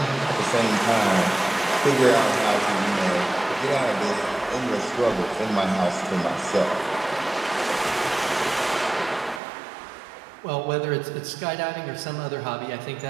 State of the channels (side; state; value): left; drops out; at 9.4 s